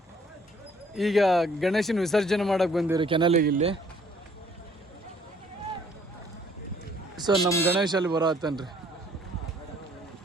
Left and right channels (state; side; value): normal; both; correlation 0.61